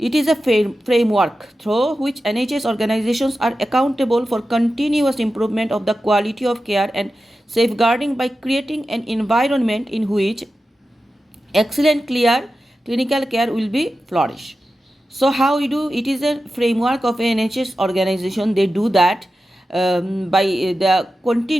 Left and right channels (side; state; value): both; normal; correlation 0.92